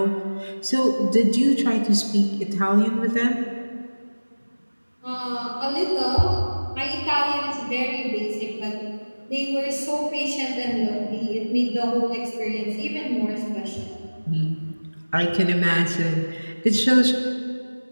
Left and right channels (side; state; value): both; inverted; correlation -1.00